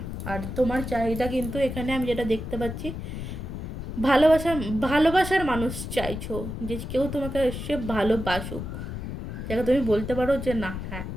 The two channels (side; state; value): left; noise; rumble, 6 dB below the sound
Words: আর তোমার চাহিদা কিন্তু এখানে আমি যেটা দেখতে পাচ্ছি, ভালোবাসার মানুষ চাইছো, যে কেউ তোমাকে এসে ভালোবাসুক, যাকে তুমি বলতে পারো যে না, হ্যাঁ